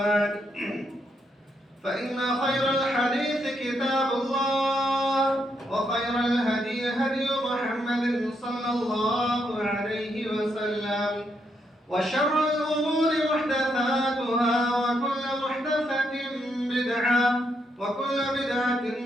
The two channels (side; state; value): both; normal; correlation 0.78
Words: فإن خير الحديث كتاب الله وخير الهدي هدي محمد صلى الله عليه وسلم وشر الأمور محدثاتها وكل محدثة بدعة وكل بدعة